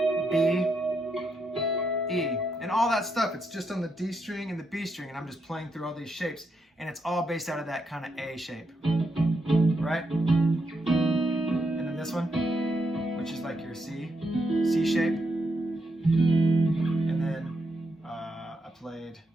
B, E. And all that stuff, it's just on the D string and the B string, and I'm just playing through all these shapes, and it's all based out of that kind of A shape, right? And then this one, which is like your C shape. And then I played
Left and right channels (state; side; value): normal; both; correlation 0.81